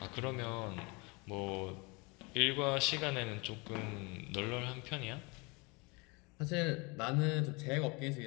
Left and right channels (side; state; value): right; quieter; 28.1 dB